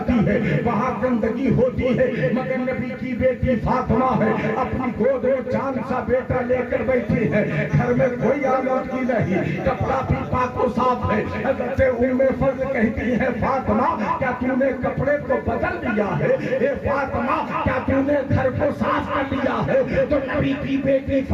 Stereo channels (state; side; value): identical; both; correlation 1.00